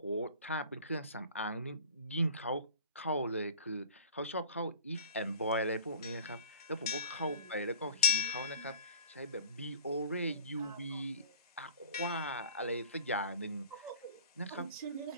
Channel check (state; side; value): inverted; both; correlation -0.46